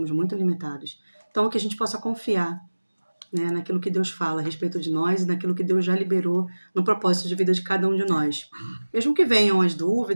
muito limitados. Então, que a gente possa confiar, né, naquilo que Deus fala a respeito de nós e naquilo que Deus já liberou no propósito de vida de cada um de nós. Mesmo que venham as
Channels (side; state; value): both; inverted; correlation -1.00